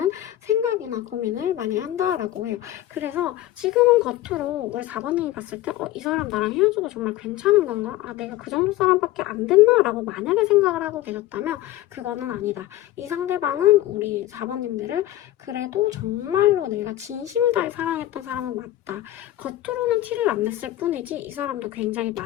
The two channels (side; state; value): right; quieter; 14.7 dB